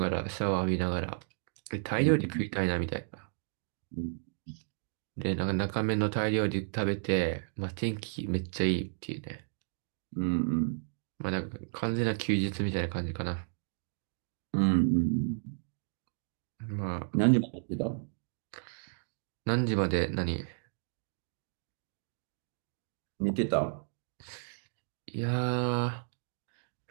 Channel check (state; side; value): silent; left; digital silence